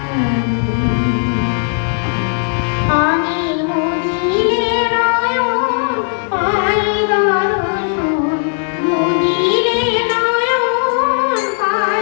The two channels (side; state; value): right; silent; digital silence